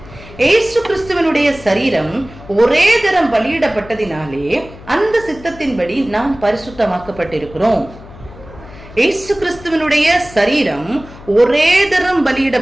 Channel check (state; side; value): noise; left; hum, 18 dB below the sound